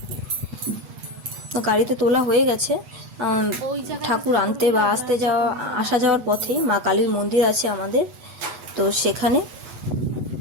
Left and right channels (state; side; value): late; left; 8.1 ms